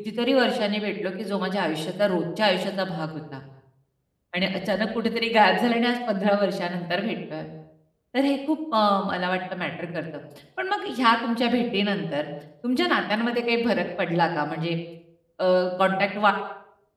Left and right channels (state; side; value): identical; both; correlation 1.00